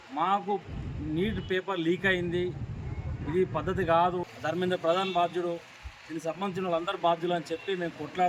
మాకు నీట్ పేపర్ లీక్ అయింది, ఇది పద్ధతి కాదు, ధర్మేంద్ర ప్రధాన్ బాధ్యుడు, దీనికి సంబంధించిన వాళ్ళందరూ బాధ్యులు అని చెప్పి మేము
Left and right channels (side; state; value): both; identical; correlation 1.00